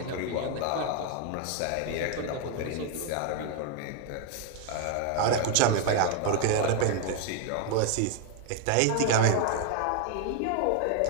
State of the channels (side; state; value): both; different; correlation 0.01